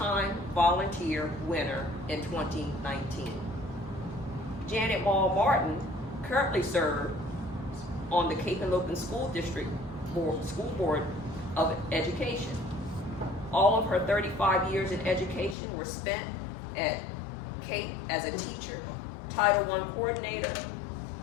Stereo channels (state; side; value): drops out; right; at 15.6 s